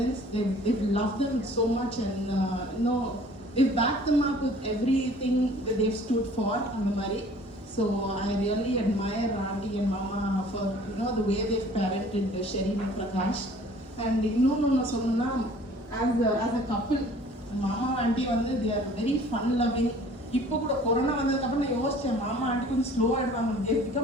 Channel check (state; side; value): normal; both; correlation 0.51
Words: They've loved them so much, and they've backed them up with everything that they've stood for in the Mari. So I really admire Auntie and Mama for the way they've parented Sherin and Prakash. And as a couple, Mama and Auntie they are very fun loving. இப்போ கூட corona வந்ததுக்கப்புறம் நான் யோசிச்சேன், மாமா aunty கொஞ்சம் slow ஆகிடுவாங்க. they